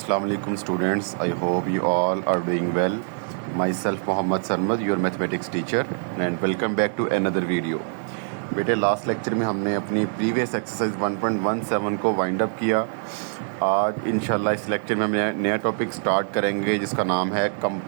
alaikum students. I hope you all are doing well. Myself Mohammad Sarmad, your mathematics teacher, and welcome back to another video. बेटे last lecture में हमने अपनी previous exercise 1.17 को wind up किया। आज इंशाल्लाह इस lecture में हम नया टॉपिक स्टार्ट करेंगे जिसका नाम है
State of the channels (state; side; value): silent; left; digital silence